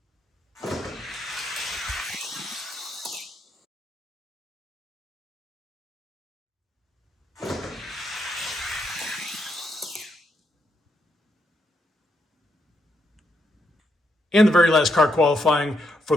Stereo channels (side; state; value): both; normal; correlation 0.79